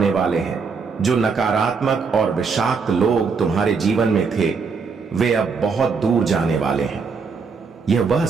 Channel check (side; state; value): left; quieter; 5.2 dB